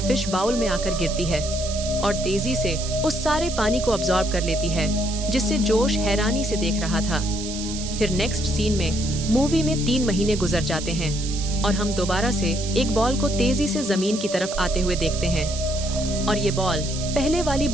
फिश बाउल में आकर गिरती है और तेजी से उस सारे पानी को अब्सॉर्ब कर लेती है, जिससे जोश हैरानी से देख रहा था। फिर नेक्स्ट सीन में मूवी में 3 महीने गुजर जाते हैं और हम दोबारा से एक बॉल को तेजी से जमीन की तरफ आते हुए देखते हैं। और ये बॉल पहले वाली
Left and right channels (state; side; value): noise; right; hiss, 8 dB below the sound